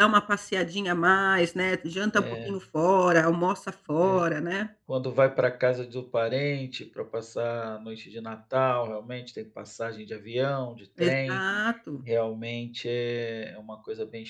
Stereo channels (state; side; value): identical; both; correlation 1.00